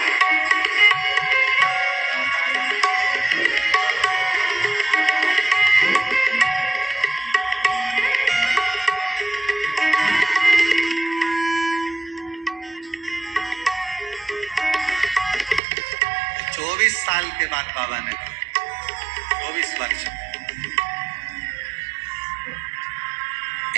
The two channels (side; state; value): left; drops out; at 15.6 s